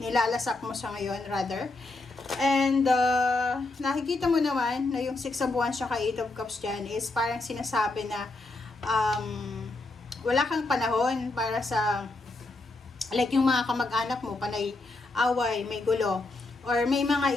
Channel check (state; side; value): quieter; right; 3.1 dB